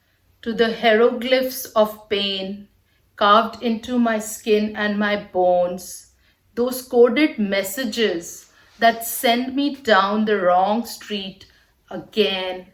to the hieroglyphs of pain carved into my skin and my bones, those coded messages that send me down the wrong street again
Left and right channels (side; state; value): both; identical; correlation 1.00